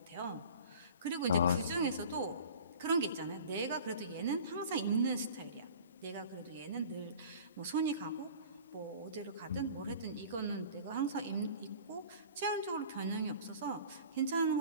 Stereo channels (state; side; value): inverted; both; correlation -0.42